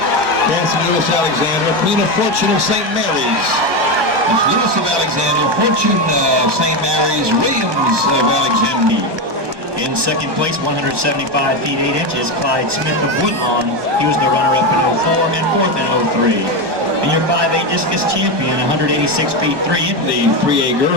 Cassidy Lewis Alexandria, Queen of Fortune of St. Mary's. It's Lewis of Alexandria, Fortune of St. Mary's, Williams of Alexandria. in second place, 175 feet 8 inches, Clyde Smith of Woodlawn. He was the runner-up in 04 and 4th in 03. And your 5A discus champion, 186 feet 3 inches. The 3A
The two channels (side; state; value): left; late; 1.1 ms